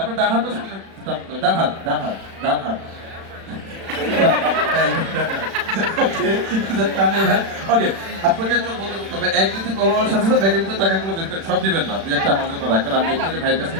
ডান হাতটা সামনে টানতে হবে। ডান হাত, ডান হাত, ডান হাত। ওকে, আপনাকে চোখ বন্ধ করতে হবে। এক দুই তিন বলার সাথে সাথে ব্যাগের ভিতরে টাকাগুলো বের করেন, সব দিবেন না, দুই একটা আমার জন্য রাখবেন, আমি আপনাকে ভাইয়ের কাছ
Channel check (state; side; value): late; left; 36 ms